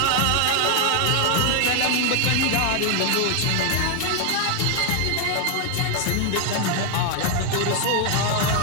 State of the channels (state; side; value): different; both; correlation 0.00